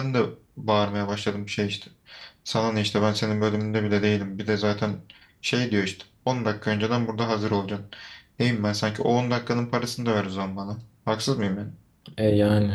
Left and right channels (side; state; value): both; identical; correlation 1.00